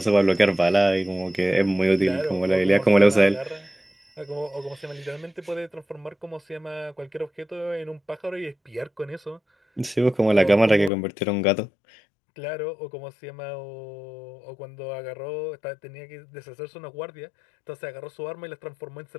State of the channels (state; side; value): drops out; right; at 10.9 s